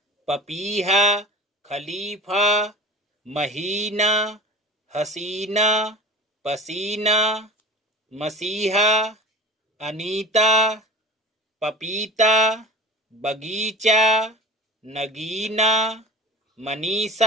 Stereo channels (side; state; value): both; normal; correlation 0.34